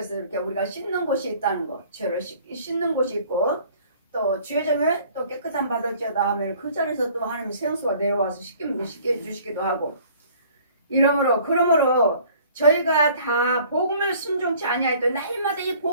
이렇게 우리가 씻는 곳이 있다는 거. 죄를 씻는 곳이 있고 또 죄점에 또 깨끗한 받을지어다 하면 그 자리에서 또 하나님의 생수가 내려와서 씻게 해주시기도 하고. 그러므로 저희가 다 복음을 순종치 아니하였던 날마다 이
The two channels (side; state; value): both; inverted; correlation -0.53